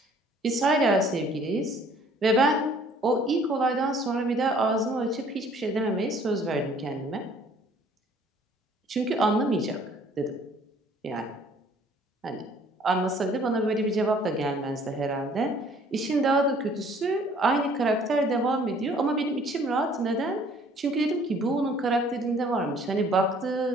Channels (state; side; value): normal; both; correlation 0.57